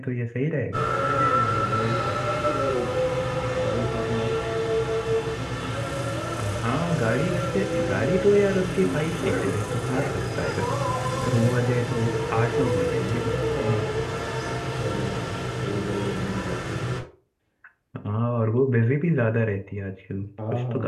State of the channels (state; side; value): identical; both; correlation 1.00